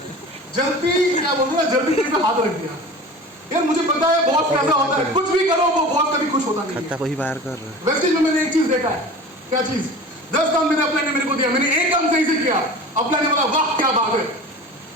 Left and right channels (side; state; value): both; normal; correlation 0.37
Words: जल्दी क्या बोलूं ना, जल्दी कहीं पे हाथ रख दिया। यार मुझे पता है बॉस कैसा होता है, कुछ भी करो वो बॉस कभी खुश होता नहीं है। कोई बाहर कर रहा है। वेस्टेज में मैंने एक चीज देखा है, क्या चीज, 10 काम मेरे अपने ने मेरे को दिया, मैंने एक काम सही से किया, अपने ने बोला वाह क्या बात है।